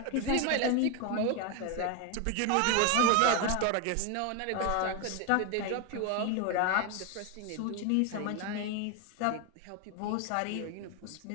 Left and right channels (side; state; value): both; different; correlation 0.01